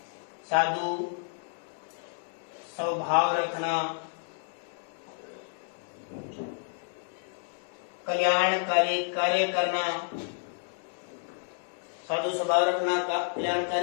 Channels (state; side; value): silent; right; digital silence